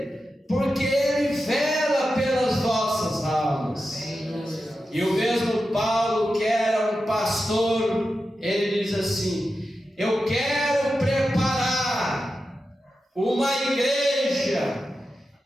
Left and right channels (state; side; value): normal; both; correlation 0.91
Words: porque ele vela pelas vossas almas. E o mesmo Paulo, que era um pastor, ele diz assim: eu quero preparar uma igreja